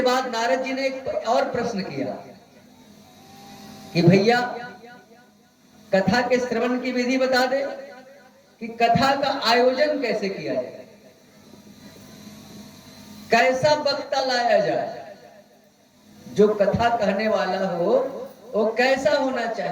बाद नारद जी ने एक और प्रश्न किया कि भैया कथा के श्रवण की विधि बता दे कि कथा का आयोजन कैसे किया जाए, कैसा वक्ता लाया जाए, जो कथा कहने वाला हो वो कैसा होना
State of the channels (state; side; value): identical; both; correlation 1.00